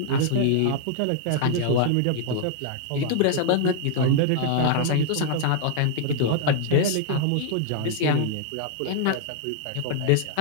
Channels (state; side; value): different; both; correlation 0.00